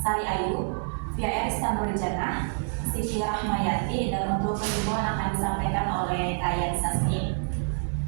Ayu, Via Istanbul Jannah, Siti Rahmayati, dan untuk kesimpulan akan disampaikan oleh Kaya Sasmi.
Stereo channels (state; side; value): silent; left; 60 dB below the other